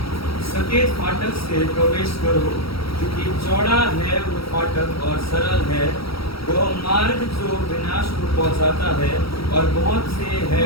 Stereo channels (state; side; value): late; right; 0.75 ms